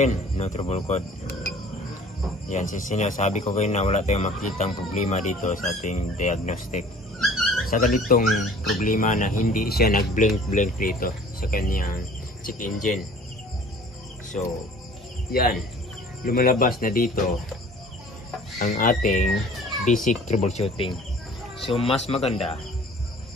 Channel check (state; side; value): normal; both; correlation 0.49